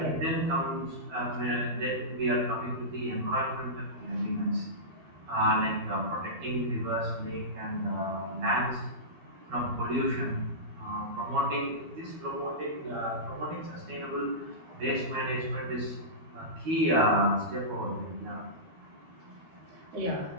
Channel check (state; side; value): late; left; 12 ms